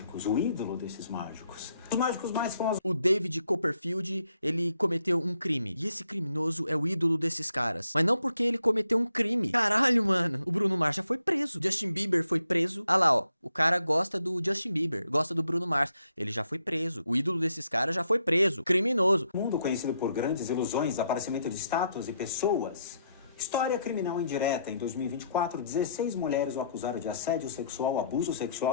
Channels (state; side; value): inverted; both; correlation -0.74